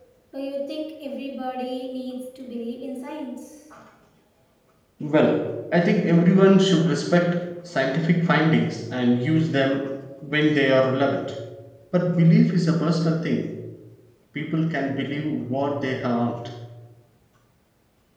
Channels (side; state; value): both; identical; correlation 1.00